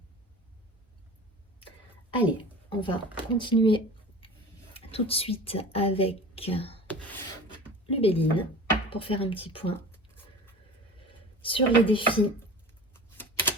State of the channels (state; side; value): normal; both; correlation 0.38